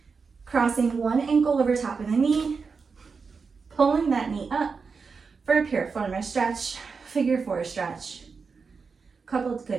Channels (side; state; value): left; quieter; 5.1 dB